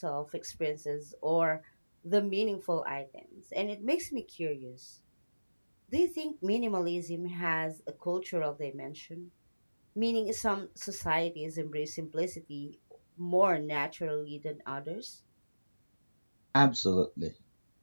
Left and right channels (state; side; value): inverted; both; correlation -1.00